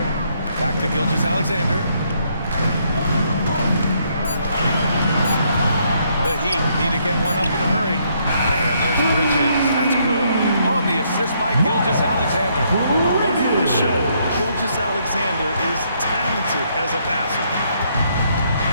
Back to Gilgeous-Alexander. The Heat need to get one up in a hurry. And there's Bridges. That's good. On the assist by Gilgeous-Alexander. Running the show, Gilgeous-Alexander is talented as a passer.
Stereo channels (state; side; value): inverted; both; correlation -0.72